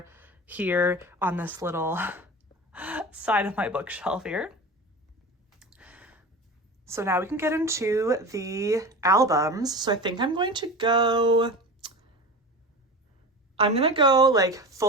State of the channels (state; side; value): normal; both; correlation 0.30